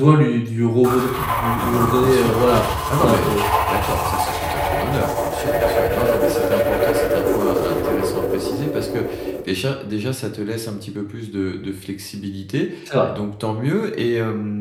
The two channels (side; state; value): both; identical; correlation 1.00